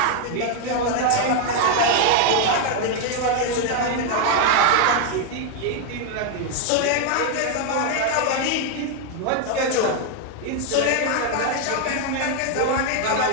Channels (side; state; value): both; different; correlation 0.01